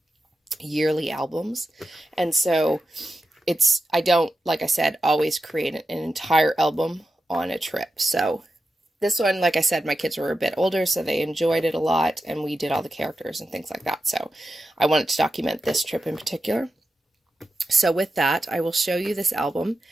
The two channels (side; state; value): both; normal; correlation 0.90